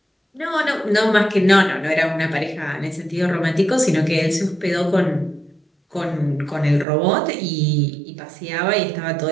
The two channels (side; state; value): left; drops out; at 6.9 s